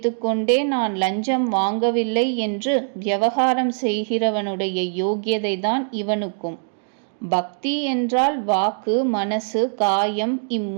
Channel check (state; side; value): silent; left; digital silence